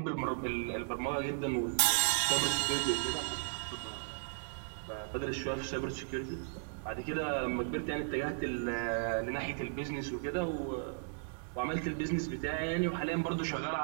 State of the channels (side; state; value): left; silent; 54 dB below the other